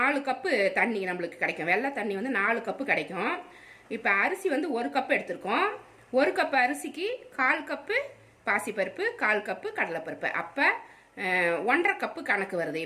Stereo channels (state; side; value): identical; both; correlation 1.00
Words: கப்பு தண்ணி நம்மளுக்கு கிடைக்கும். வெள்ளை தண்ணி 4 கப்பு கிடைக்கும். இப்போ அரிசி 1 கப்பு எடுத்திருக்கோம். 1 கப்பு அரிசிக்கு 1/4 கப்பு பாசிப்பருப்பு, 1/4 கப்பு கடலைப்பருப்பு. அப்போ 1.5 கப்பு கணக்கு வருது.